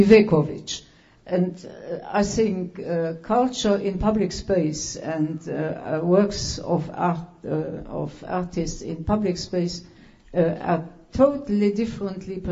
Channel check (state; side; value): identical; both; correlation 1.00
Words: And I think culture in public space and works of art of artists in public space are totally differently